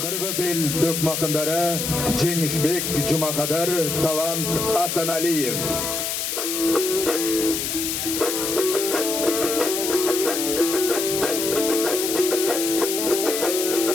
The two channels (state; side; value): noise; left; hiss, 2 dB below the sound